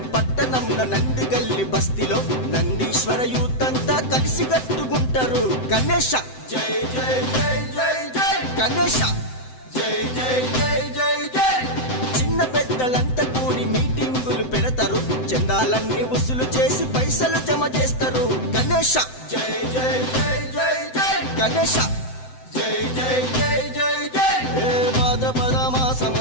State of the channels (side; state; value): right; late; 7.8 ms